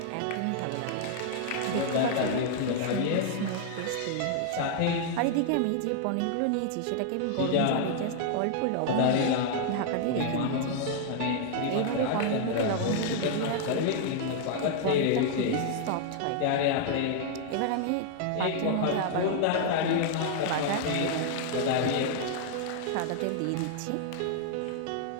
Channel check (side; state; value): both; different; correlation 0.00